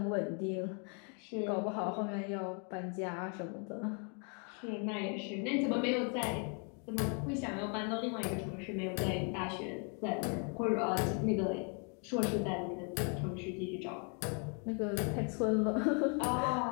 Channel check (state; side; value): quieter; right; 38.6 dB